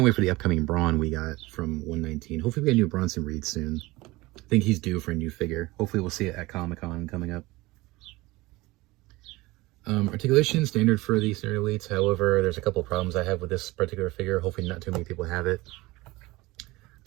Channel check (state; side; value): quieter; left; 20.9 dB